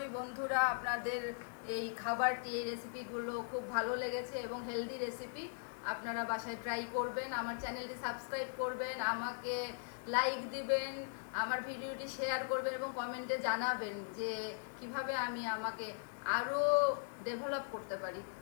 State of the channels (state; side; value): silent; right; digital silence